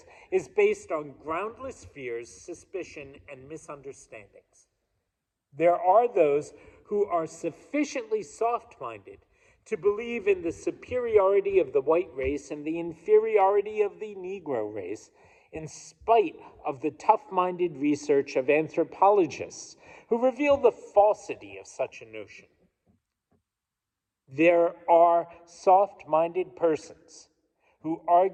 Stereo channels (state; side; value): identical; both; correlation 1.00